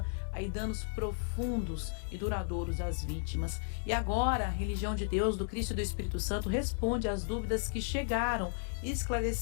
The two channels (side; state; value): right; silent; digital silence